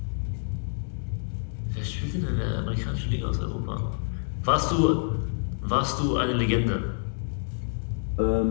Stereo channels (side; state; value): right; silent; digital silence